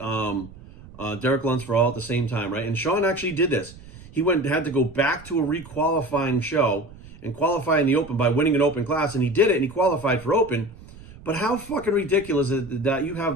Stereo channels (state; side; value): noise; right; rumble, 19 dB below the sound